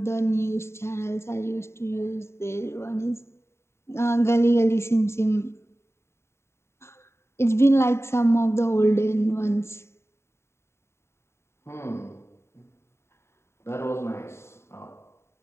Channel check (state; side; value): late; right; 0.13 ms